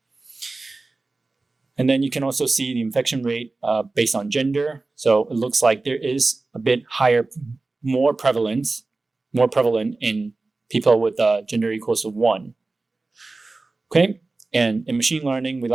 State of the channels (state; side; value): quieter; left; 3.5 dB